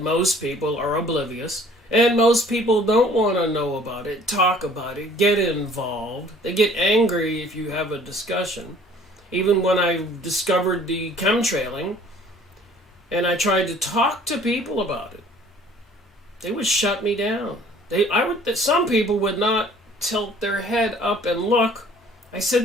people are oblivious, and most people don't want to know about it, talk about it, get involved. They get angry if you have a discussion. Even when I discovered the chemtrailing, and I tried to talk to people about it, they would shut me down. Some people would not tilt their head up and look. I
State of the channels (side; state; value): both; normal; correlation 0.54